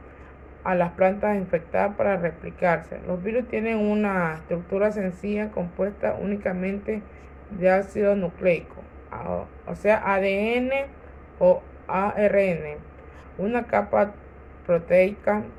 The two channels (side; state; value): both; identical; correlation 1.00